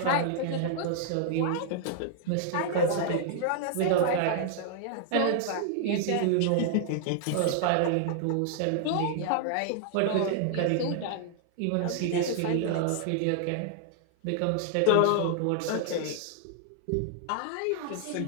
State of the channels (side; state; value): both; different; correlation -0.01